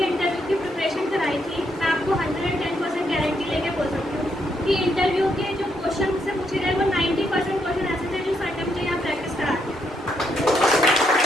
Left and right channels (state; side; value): normal; both; correlation 0.77